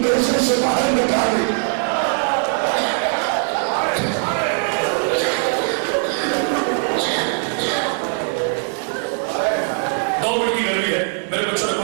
سے باہر نکالی. کی گرمی ہے میرے بچوں نے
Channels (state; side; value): silent; left; 56 dB below the other